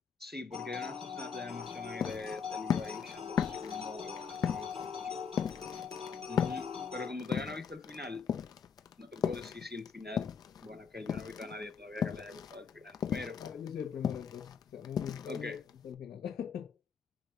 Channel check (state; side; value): quieter; right; 6.6 dB